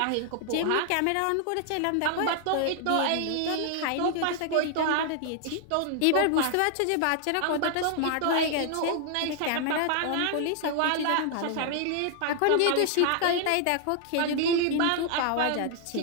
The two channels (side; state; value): both; different; correlation 0.00